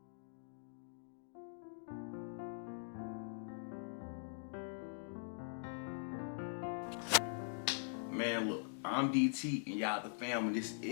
Man, look, I'm DT and y'all the fam, and this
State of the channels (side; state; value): right; silent; digital silence